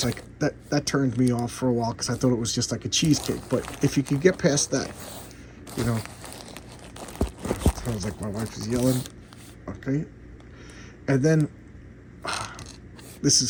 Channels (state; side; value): identical; both; correlation 1.00